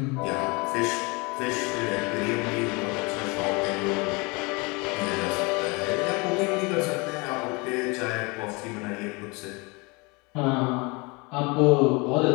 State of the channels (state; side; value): quieter; right; 27.7 dB